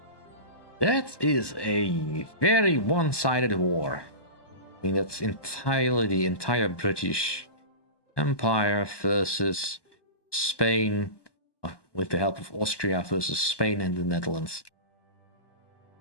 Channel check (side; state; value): right; late; 1.2 ms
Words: That is a very one-sided war. I mean, that's entirely the entire British Empire versus Spain, with the help of Austria versus Spain and the Netherlands.